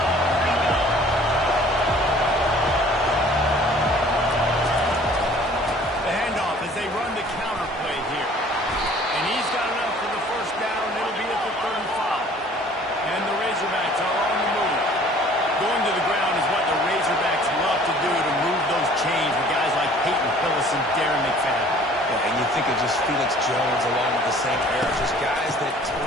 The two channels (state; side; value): normal; both; correlation 0.52